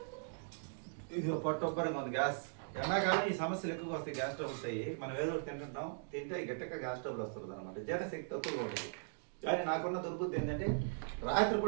ఇది పొట్టొప్పరంగా ఉంది గ్యాస్. ఎండాకాలం ఈ సమస్యలు ఎక్కువగా వస్తాయి, గ్యాస్ ట్రబుల్స్ అయ్యి. మనం ఏదో ఒకటి తింటుంటాం, తింటే గట్టిగా గ్యాస్ ట్రబుల్ వస్తుంది అనమాట. జీర్ణశక్తి తక్కువగా ఉంటుంది. కానీ నాకున్న దుర్బుద్ధి ఏంటంటే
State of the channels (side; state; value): left; silent; digital silence